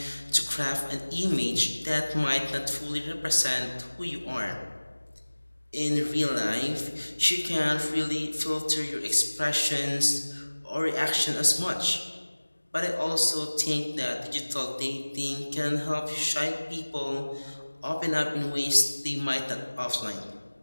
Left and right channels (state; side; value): inverted; both; correlation -1.00